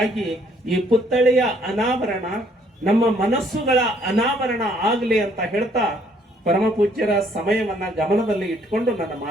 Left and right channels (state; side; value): normal; both; correlation 0.64